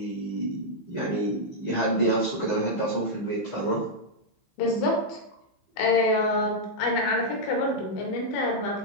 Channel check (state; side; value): late; right; 15 ms